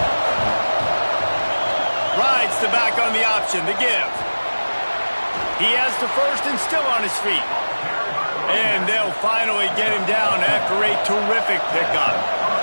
Rides the back on the option, the give. He has the first and still on his feet. And they'll finally get him down after a terrific pickup.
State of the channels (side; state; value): both; inverted; correlation -1.00